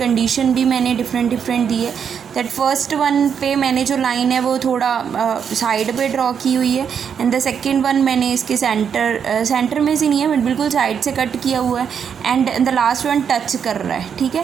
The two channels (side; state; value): left; quieter; 7.4 dB